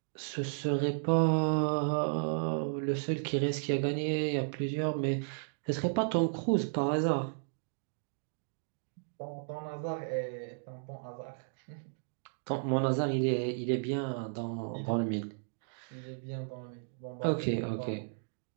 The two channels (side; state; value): left; silent; digital silence